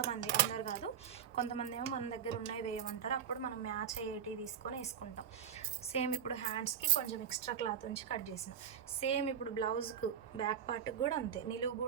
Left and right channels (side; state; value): left; quieter; 8.4 dB